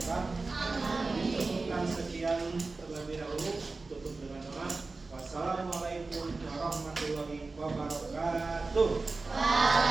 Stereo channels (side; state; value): left; quieter; 3.7 dB